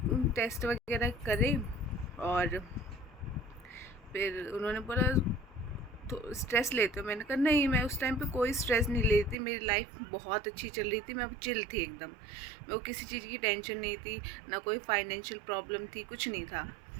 टेस्ट वगैरह करे और फिर उन्होंने बोला तो स्ट्रेस लेते हो। मैंने कहा नहीं, मैं उस टाइम पे कोई स्ट्रेस नहीं लेती, मेरी लाइफ बहुत अच्छी चल रही थी, मैं चिल थी एकदम, मेरे को किसी चीज़ की टेंशन नहीं थी, ना कोई फाइनेंशियल प्रॉब्लम थी, कुछ नहीं था।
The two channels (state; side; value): drops out; left; at 9.3 s